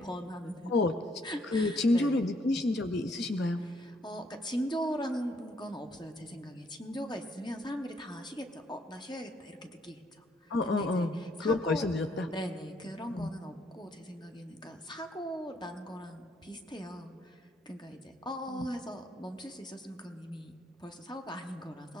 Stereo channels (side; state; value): both; normal; correlation 0.69